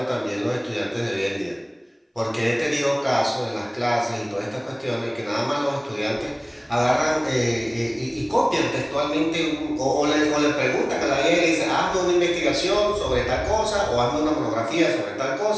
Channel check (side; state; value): both; identical; correlation 1.00